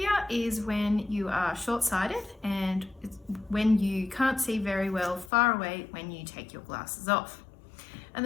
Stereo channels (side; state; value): right; drops out; at 5.3 s